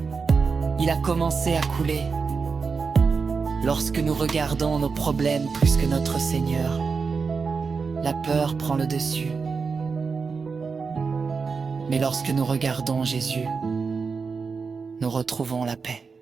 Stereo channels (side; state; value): left; quieter; 5.1 dB